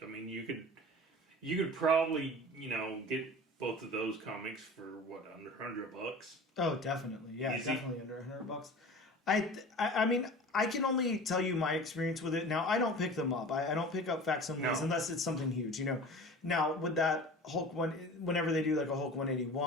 You could probably get both of those comics for under $100. Oh, definitely. Yeah, easy. Definitely under $100. I can only tell you my experience with it. Now, I don't pick them up. I don't pick up facsimiles unless it's something huge, Now, with that Hulk one, whenever they do like a Hulk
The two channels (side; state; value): both; normal; correlation 0.38